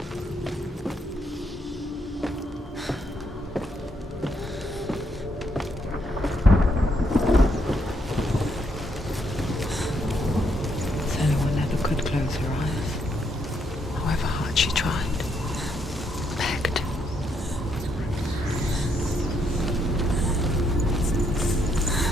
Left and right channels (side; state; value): both; normal; correlation 0.74